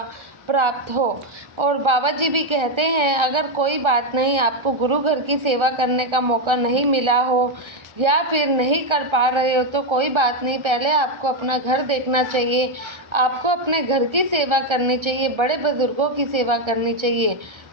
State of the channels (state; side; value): late; left; 1.3 ms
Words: प्राप्त हो। और बाबा जी भी कहते हैं, अगर कोई बात नहीं, आपको गुरु घर की सेवा करने का मौका नहीं मिला हो या फिर नहीं कर पा रहे हो तो कोई बात नहीं, पहले आपको अपना घर देखना चाहिए। आपको अपने घर की सेवा करनी चाहिए, बड़े बुजुर्गों की सेवा करनी चाहिए,